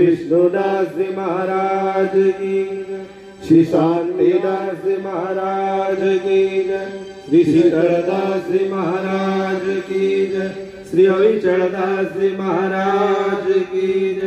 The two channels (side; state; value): both; identical; correlation 1.00